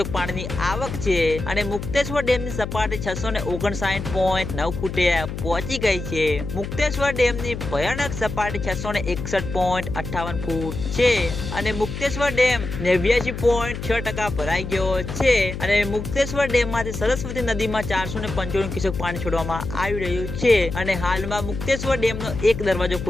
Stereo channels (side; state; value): left; noise; hum, 7 dB below the sound